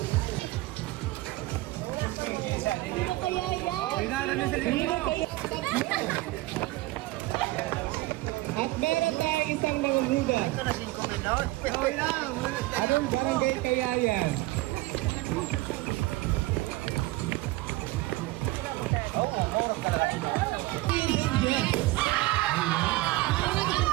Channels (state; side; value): quieter; left; 19.4 dB